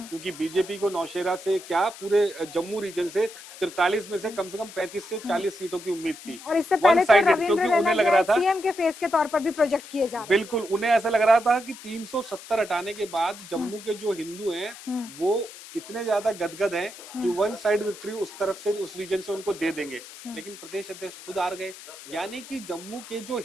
बीजेपी को नौशेरा से क्या पूरे जम्मू रीजन से 43 में से कम 35 से 40 सीटों की उम्मीद थी। और इससे पहले तो रविंद्र रैना लग रहा था सीएम के फेस के तौर पर भी प्रोजेक्ट किए जा रहे हैं। बिल्कुल, उन्हें ऐसा लग रहा था कि 370 हटाने के बाद जम्मू के जो हिंदू हैं वो इतने ज्यादा गदगद हैं कि वन साइड विक्ट्री उस तरफ से उस रीजन से उनको दे देंगे, लेकिन प्रदेश अध्यक्ष खुद हार गए। यानी कि जम्मू के जो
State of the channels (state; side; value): noise; left; hiss, 16 dB below the sound